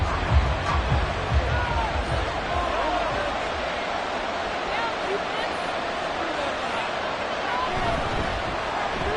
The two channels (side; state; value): both; identical; correlation 1.00